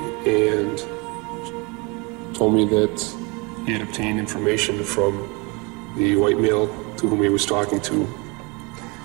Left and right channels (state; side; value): quieter; left; 28.8 dB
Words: and told me that he had obtained information from the white male to whom he was talking to,